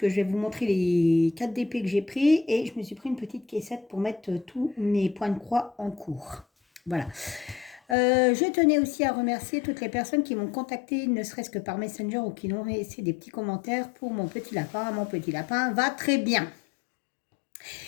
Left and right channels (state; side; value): drops out; right; at 8.0 s